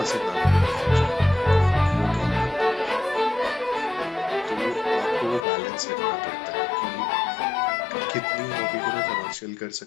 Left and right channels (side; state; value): right; drops out; at 5.5 s